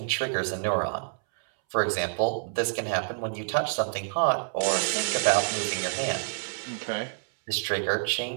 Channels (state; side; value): silent; left; 60 dB below the other